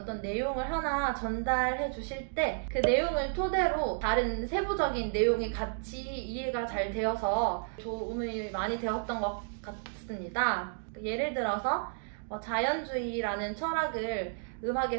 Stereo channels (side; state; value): left; silent; digital silence